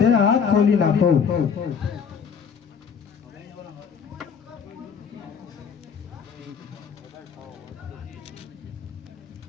હાથ ખોલી નાખો.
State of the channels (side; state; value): right; quieter; 6.6 dB